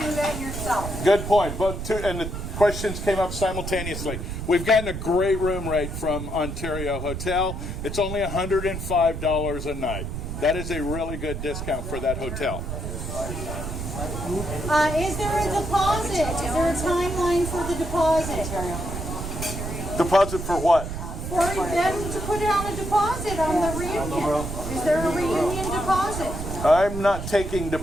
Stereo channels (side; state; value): right; noise; rumble, 6 dB below the sound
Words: that yourself. Good point. And the questions came up simultaneously. We've gotten a great room rate from Ontario Hotel. It's only $105 a night. That is a really good discount for that hotel. Is there a deposit? Is there a timeline for the deposit? Deposit for what? For them to put down a deposit on the reunion. Is there a reunion deposit? I'm not taking